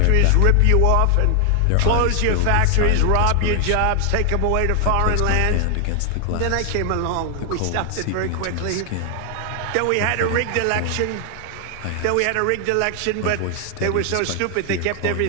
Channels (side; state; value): both; different; correlation 0.00